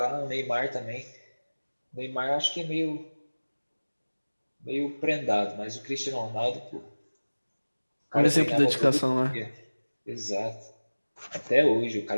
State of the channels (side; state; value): both; inverted; correlation -1.00